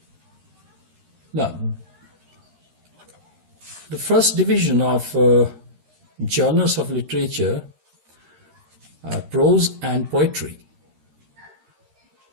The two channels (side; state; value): left; late; 13 ms